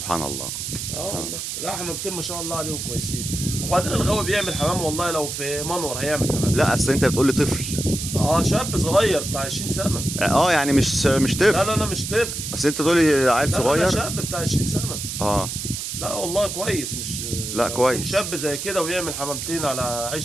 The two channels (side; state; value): right; noise; hiss, 5 dB below the sound